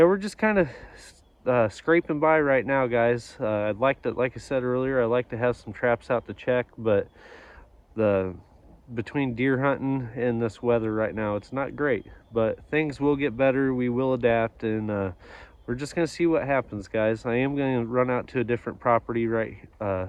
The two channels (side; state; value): both; identical; correlation 1.00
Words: we're just kind of scraping by right now, guys. I'd like to, like I said earlier, I'd like to have some traps out to check, but between deer hunting and this weather right now, it's not great. But things will get better. We will adapt, and we're just gonna see what happens, guys. I am gonna run out to a different property right